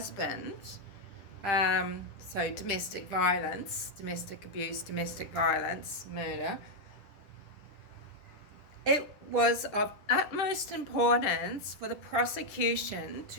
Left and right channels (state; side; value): late; right; 10 ms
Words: so domestic violence, domestic abuse, domestic violence, murder, it was of utmost importance for the prosecution